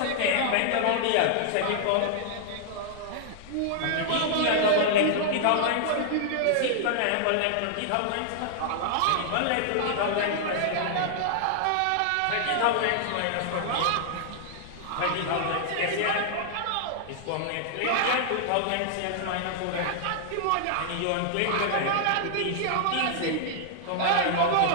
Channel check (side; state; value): both; different; correlation -0.01